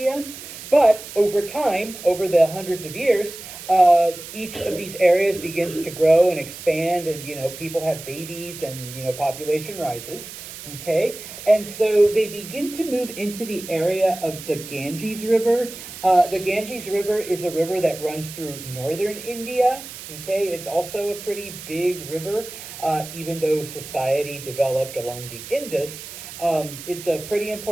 but over time, over the hundreds of years, each of these areas begins to grow and expand, and people have babies, and population rises. Okay, and so they begin to move into the area of the Ganges River. The Ganges River is a river that runs through northern India. Okay, it's also a pretty big river. Even though society developed along the Indus, it's a pretty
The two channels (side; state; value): right; noise; hiss, 12 dB below the sound